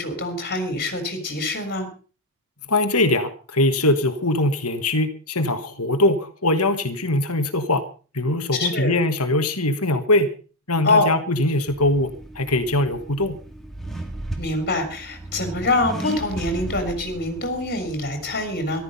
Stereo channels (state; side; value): normal; both; correlation 0.03